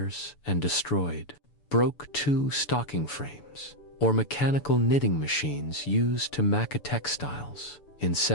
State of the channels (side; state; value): right; late; 6.9 ms